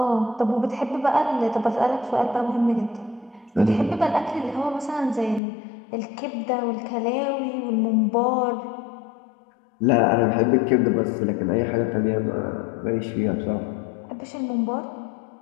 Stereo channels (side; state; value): right; drops out; at 5.4 s